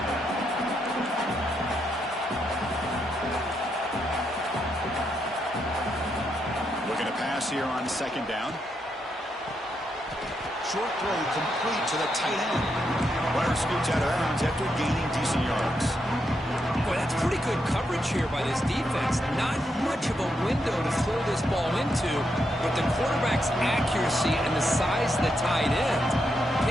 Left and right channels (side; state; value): both; normal; correlation 0.81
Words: Looking to pass here on second down. Short throw complete to the tight end. Runner scoots out of bounds after gaining decent yards. Boy, that's pretty good coverage here by this defense. Not much of a window to throw this ball into, but the quarterback's accuracy and the size of the tight end